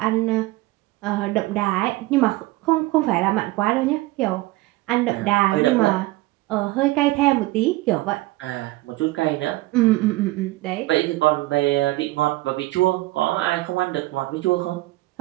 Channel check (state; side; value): quieter; left; 19.3 dB